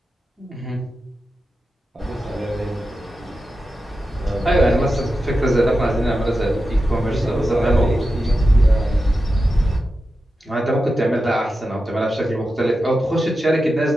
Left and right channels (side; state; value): both; normal; correlation 0.91